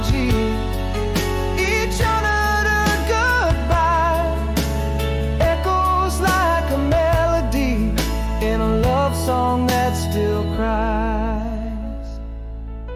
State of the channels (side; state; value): both; identical; correlation 1.00